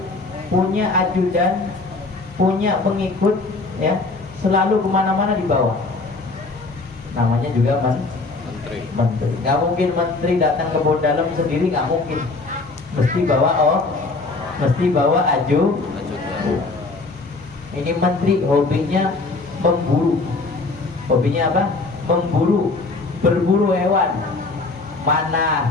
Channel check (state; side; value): quieter; right; 3.6 dB